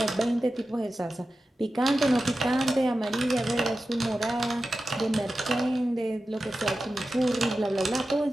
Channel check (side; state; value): both; normal; correlation 0.93